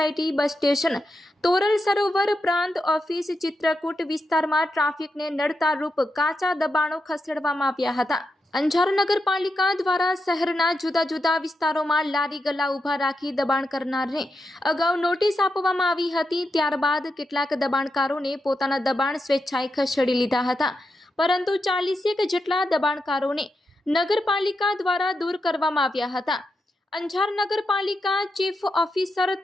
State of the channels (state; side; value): normal; both; correlation 0.86